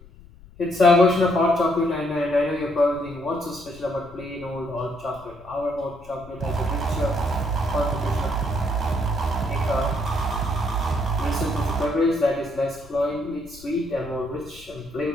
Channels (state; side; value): noise; left; rumble, 21 dB below the sound